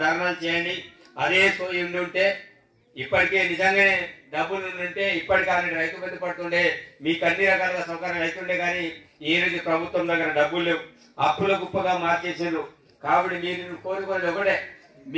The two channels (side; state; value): both; identical; correlation 1.00